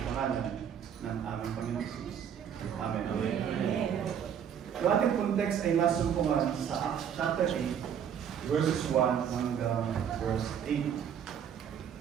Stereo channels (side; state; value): left; quieter; 8.5 dB